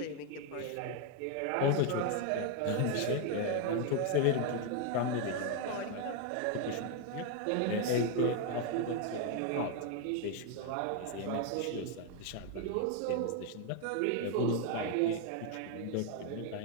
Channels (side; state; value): both; different; correlation 0.01